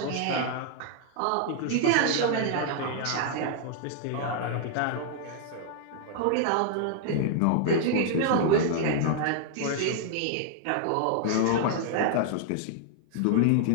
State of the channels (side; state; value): both; different; correlation 0.00